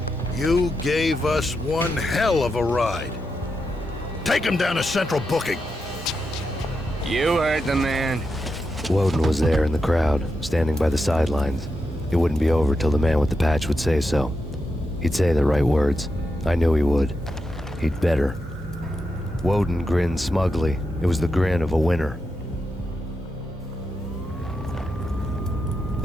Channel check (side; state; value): both; normal; correlation 0.86